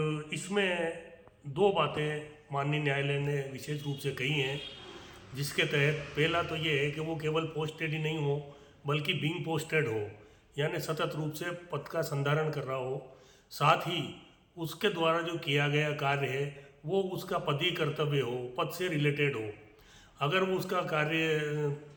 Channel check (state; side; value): identical; both; correlation 1.00